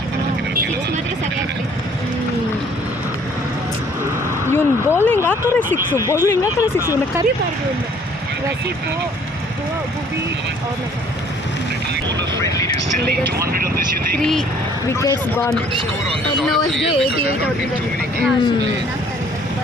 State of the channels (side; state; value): both; normal; correlation 0.58